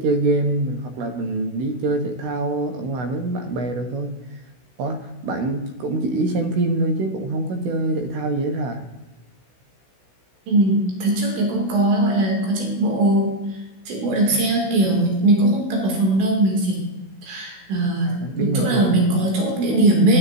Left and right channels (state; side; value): late; left; 16 ms